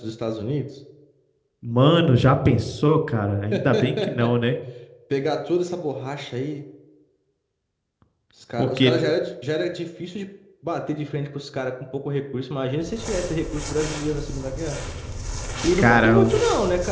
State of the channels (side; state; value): both; identical; correlation 1.00